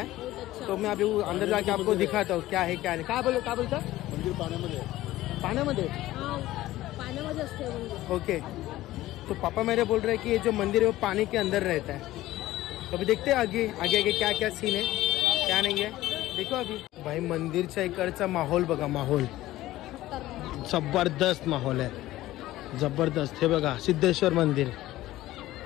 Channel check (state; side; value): quieter; right; 15.9 dB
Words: तो मैं अभी अंदर जाके आपको दिखाता हूँ क्या है क्या नहीं. क्या बोलता मंदिर पाण्यामध्ये पाण्यामध्ये. पाण्यामध्ये असते मंदिर. ओके. तो पापा मेरे बोल रहे हैं कि ये जो मंदिर है वो पानी के अंदर रहता है. तो अभी देखते हैं आगे आगे आगे क्या क्या सीन है क्या नहीं है. देखो अभी भाई मंदिरच्या इकडचा माहोल बघा. माहोल जबरदस्त माहोल आहे, जबरदस्त. हे बघा सिद्धेश्वर मंदिर.